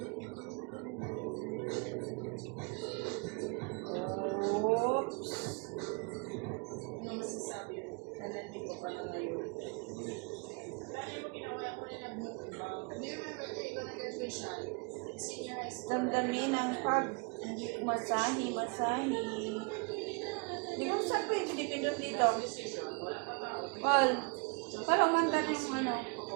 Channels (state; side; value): quieter; left; 32.6 dB